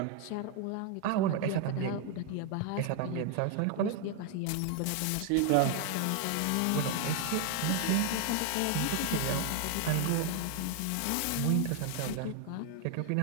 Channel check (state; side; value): different; both; correlation 0.00